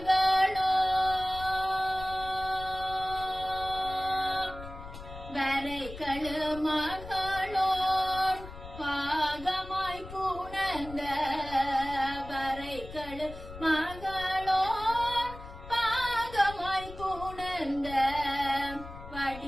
வரைகளு மகளோர் பாகமாய் புணர்ந்த வரைகளு மகளோர் பாகமாய் புணர்ந்த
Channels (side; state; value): left; noise; rumble, 14 dB below the sound